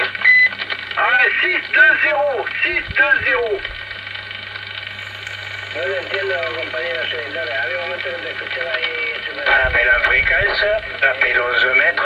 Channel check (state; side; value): identical; both; correlation 1.00